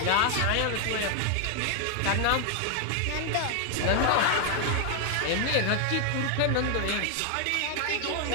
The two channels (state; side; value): different; both; correlation 0.00